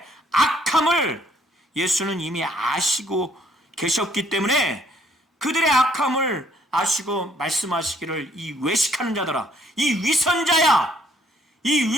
악함을 예수는 이미 아시고 계셨기 때문에 그들의 악함을 아시고 말씀하시기를 이 외식하는 자들아, 이 위선자야, 이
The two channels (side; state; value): both; normal; correlation 0.65